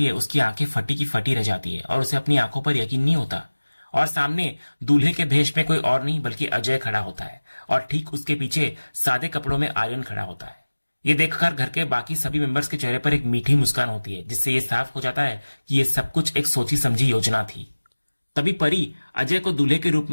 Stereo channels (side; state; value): both; inverted; correlation -1.00